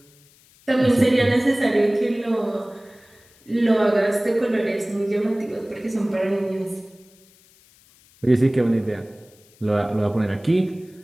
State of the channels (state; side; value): noise; left; hiss, 29 dB below the sound